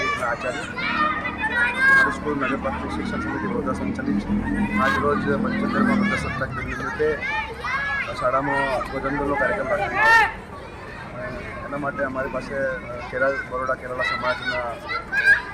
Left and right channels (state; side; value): identical; both; correlation 1.00